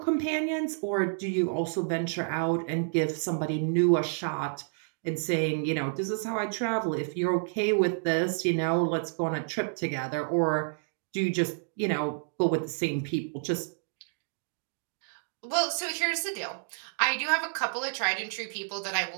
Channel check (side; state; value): left; silent; digital silence